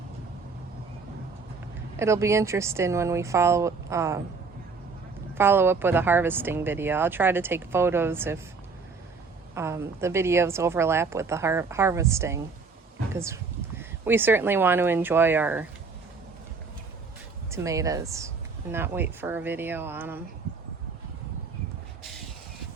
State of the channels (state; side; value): quieter; left; 4.7 dB